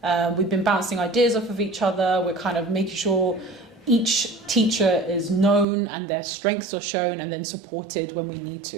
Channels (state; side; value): drops out; left; at 5.7 s